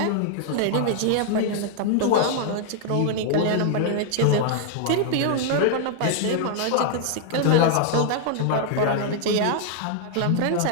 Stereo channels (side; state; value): both; different; correlation 0.00